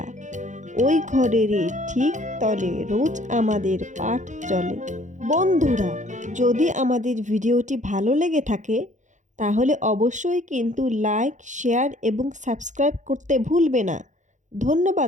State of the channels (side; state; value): left; late; 0.35 ms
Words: ওই ঘরেরই ঠিক তলে রোজ আমাদের পাঠ চলে। বন্ধুরা, যদি আমাদের ভিডিওটি ভালো লেগে থাকে তাহলে অবশ্যই কিন্তু লাইক, শেয়ার এবং সাবস্ক্রাইব করতে ভুলবে না।